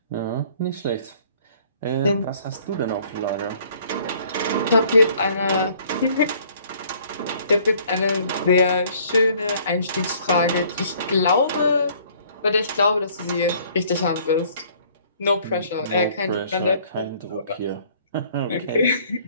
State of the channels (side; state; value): both; inverted; correlation -0.58